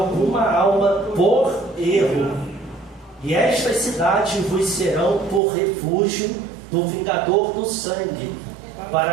alma por erro. E estas cidades vos serão por refúgio do vingador do sangue,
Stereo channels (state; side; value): drops out; left; at 5.4 s